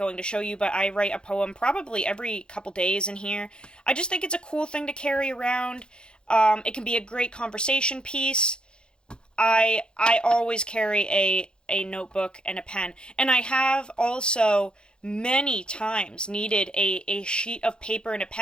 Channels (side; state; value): right; late; 0.050 ms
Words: to show you, but I write a poem probably every couple days in here. I just think it's a cool thing to carry around. It can be a great conversation piece. I always carry a notebook and a pen. And I have also many times needed a sheet of paper and a